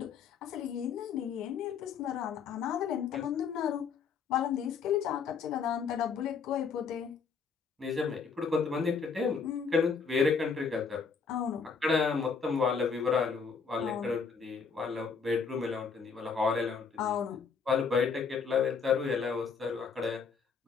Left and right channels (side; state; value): right; quieter; 5.7 dB